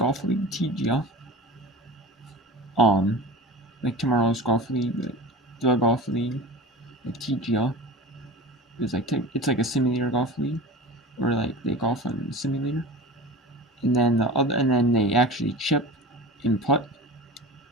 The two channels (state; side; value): normal; both; correlation 0.33